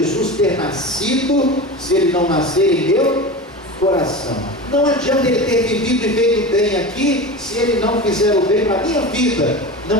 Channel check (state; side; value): normal; both; correlation 0.28